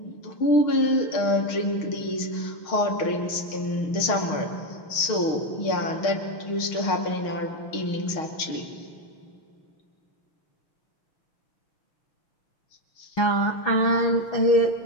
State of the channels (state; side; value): late; right; 6.5 ms